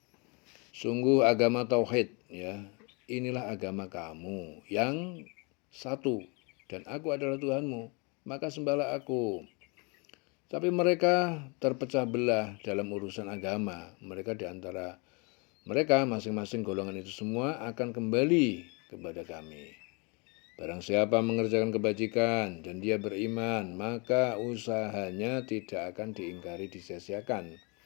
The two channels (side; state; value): right; quieter; 31.4 dB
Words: Sungguh agama tauhid, ya, inilah agama kamu yang satu, dan aku adalah Tuhanmu, maka sembahlah aku. Tapi mereka terpecah belah dalam urusan agama. Mereka di antara mereka masing-masing golongan itu semua akan kembali kepada kami. Barang siapa mengerjakan kebajikan dan dia beriman, maka usahanya tidak akan diingkari, disia-siakan.